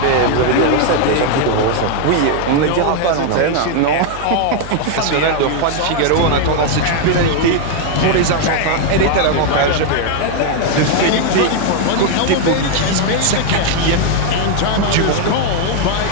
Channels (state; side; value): different; both; correlation 0.00